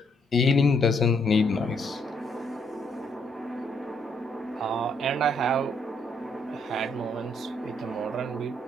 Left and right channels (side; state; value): both; normal; correlation 0.72